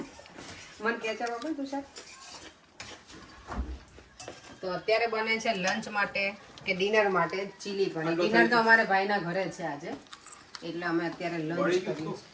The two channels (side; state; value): both; identical; correlation 1.00